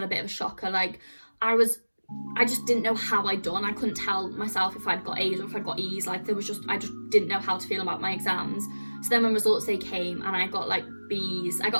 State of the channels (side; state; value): both; inverted; correlation -1.00